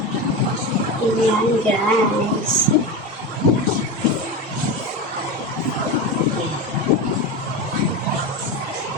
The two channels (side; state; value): both; normal; correlation 0.21